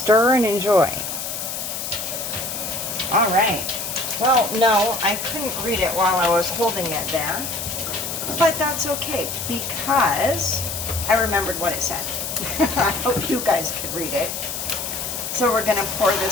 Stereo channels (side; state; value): left; noise; hiss, 5 dB below the sound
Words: and enjoy. All right. Well, no, I couldn't read it while I was holding it there. But that's okay because I remembered what it said. I hope you guys could read it. So we're going to pour